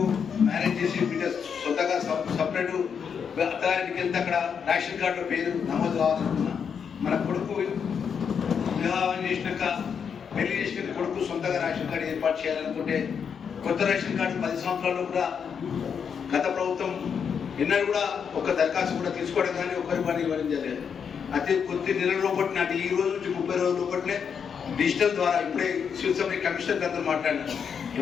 మ్యారేజ్ చేసి బిడ్డ సొంతగా సపరేట్ అత్తగారికి వెళ్తే అక్కడ రేషన్ కార్డులో పేరు నమోదు కావాలనుకున్నా, మన కొడుకు వివాహం చేసినాక పెళ్లి చేసిన కొడుకు సొంతగా రేషన్ కార్డు ఏర్పాటు చేయాలనుకుంటే కొత్త రేషన్ కార్డు 10 సంవత్సరాల్లో కూడా గత ప్రభుత్వం ఎన్నడూ కూడా ఒక దరఖాస్తు కూడా తీసుకోవడం కానీ ఒకరి పని ఇవ్వడం జరిగేది. అదే కొద్ది నెలల లోపటి నాటి ఈ రోజు నుంచి 30 రోజుల లోపట్లే డిజిటల్ ద్వారా ఇప్పుడే శివసభ కమిషనర్ గారితో మాట్లాడినారు.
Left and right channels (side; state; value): right; quieter; 6.9 dB